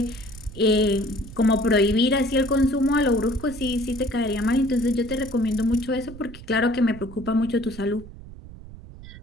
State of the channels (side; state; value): right; noise; rumble, 16 dB below the sound